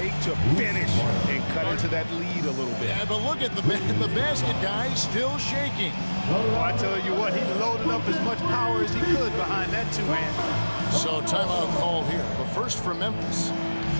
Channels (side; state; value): both; inverted; correlation -1.00